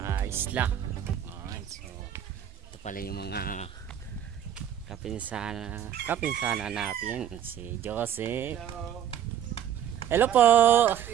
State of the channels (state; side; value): quieter; left; 10.0 dB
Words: isla. Alright, so ito pala yung mga kapinsana natin, si Jose. Hello po.